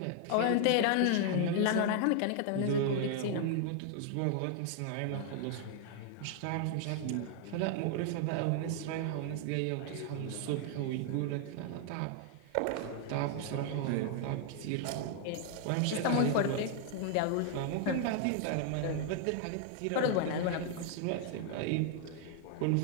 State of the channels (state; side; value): different; both; correlation 0.00